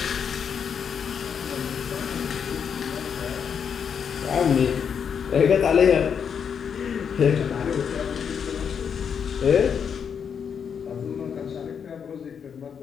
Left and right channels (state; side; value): quieter; right; 7.2 dB